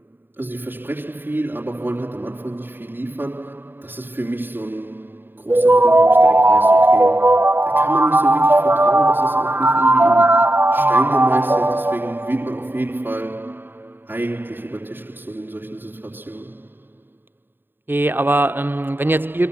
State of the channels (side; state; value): left; late; 0.096 ms